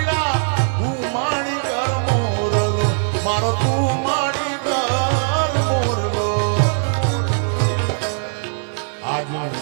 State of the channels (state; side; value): silent; left; digital silence